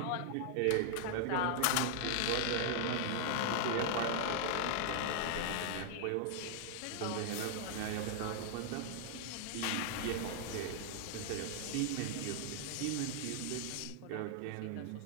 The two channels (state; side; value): different; both; correlation 0.00